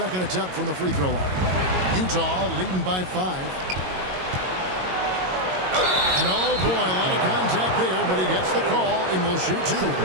attempt from the free throw line. Utah leading by 5. And oh boy, a lot of contact there, but he gets the call and will shoot 2.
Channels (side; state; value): left; late; 22 ms